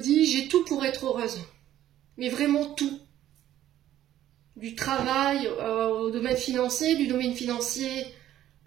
j'ai tout pour être heureuse. Mais vraiment tout. Du travail au domaine financier, du domaine financier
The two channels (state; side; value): quieter; left; 12.5 dB